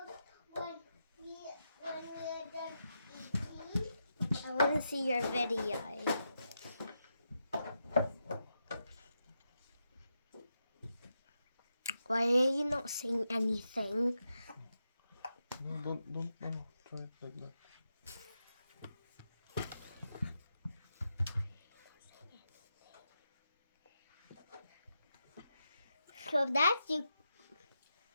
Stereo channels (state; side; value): inverted; both; correlation -0.86